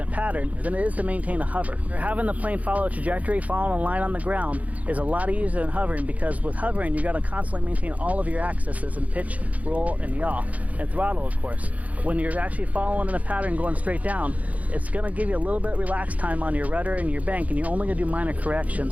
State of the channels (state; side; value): late; left; 0.071 ms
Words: pattern than it is to maintain a hover. Having the plane follow a trajectory, following a line on the ground is a lot easier than hovering, because with hovering, you got to constantly maintain all of your axes in pitch, roll, and yaw, and throttle, of course. When you're actually following in a pattern going straight down, it's going to give you a little bit of relaxed time on your rudder and your bank, and you're only going to do minor